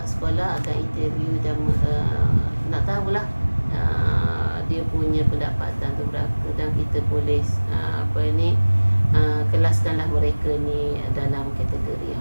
sekolah akan interview dan nak tahulah dia punya pendapatan tu berapa, dan kita boleh kelaskanlah mereka ni dalam kategori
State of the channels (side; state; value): both; inverted; correlation -1.00